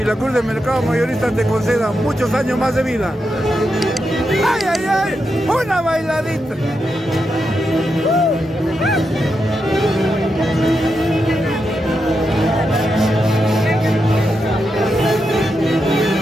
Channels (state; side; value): normal; both; correlation 0.85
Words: la Cruz del Mercado Mayorista te concedan muchos años más de vida. ¡Ay, ay, ay! ¡Una bailadita!